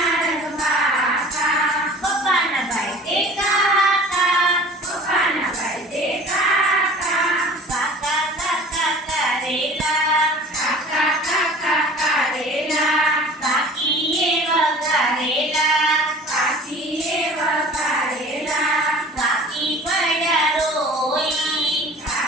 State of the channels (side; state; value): both; normal; correlation 0.44